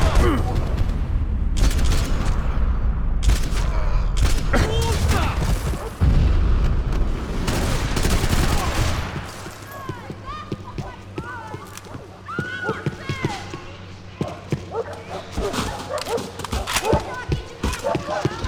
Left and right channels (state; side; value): identical; both; correlation 1.00